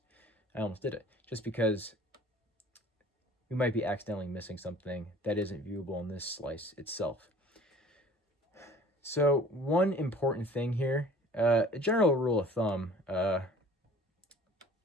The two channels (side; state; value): both; normal; correlation 0.49